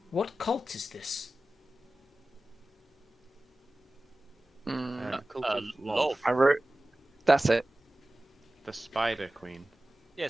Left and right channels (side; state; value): both; normal; correlation 0.96